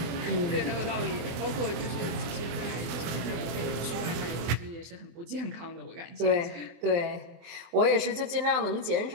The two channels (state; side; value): late; left; 24 ms